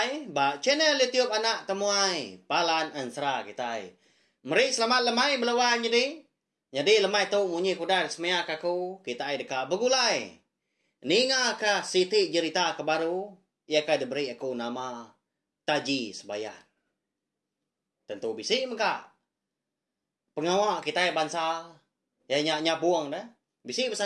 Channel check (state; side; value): identical; both; correlation 1.00